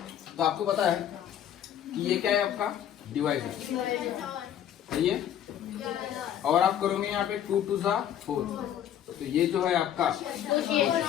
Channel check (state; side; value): quieter; right; 10.3 dB